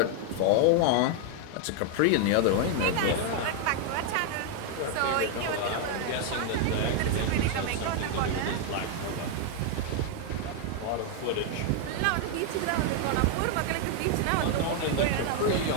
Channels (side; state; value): both; different; correlation 0.00